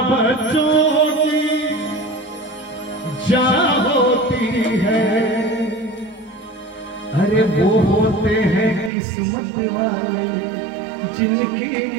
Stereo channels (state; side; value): drops out; left; at 8.9 s